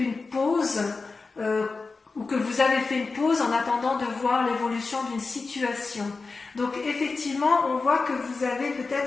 pause, ou que vous avez fait une pause en attendant de voir l'évolution d'une situation. Donc effectivement, on voit que vous avez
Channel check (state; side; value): quieter; right; 4.1 dB